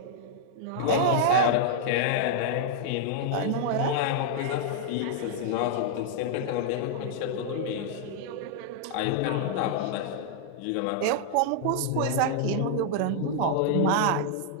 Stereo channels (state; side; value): different; both; correlation -0.01